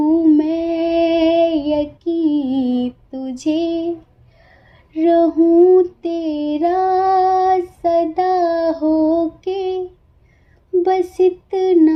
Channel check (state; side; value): identical; both; correlation 1.00